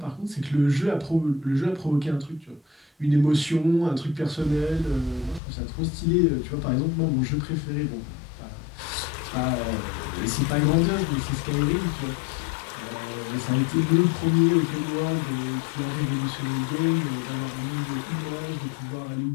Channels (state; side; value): drops out; right; at 5.4 s